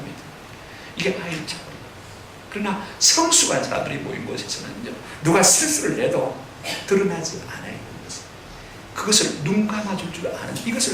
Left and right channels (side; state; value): both; identical; correlation 1.00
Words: 이게 아이들 차원. 그러나 성숙한 사람들이 모인 곳에서는요, 누가 실수를 해도 드러나지 않아요. 그것을 눈 감아줄 줄 아는,